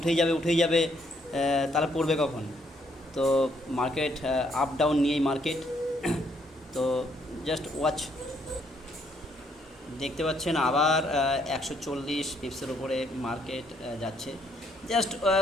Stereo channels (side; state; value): both; normal; correlation 0.70